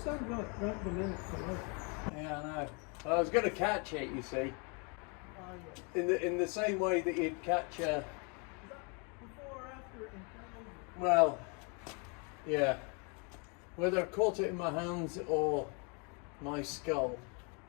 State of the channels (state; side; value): quieter; right; 34.2 dB